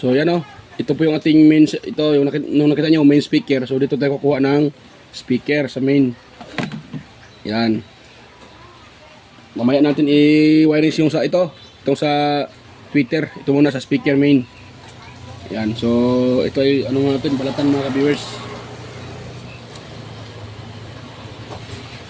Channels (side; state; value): both; identical; correlation 1.00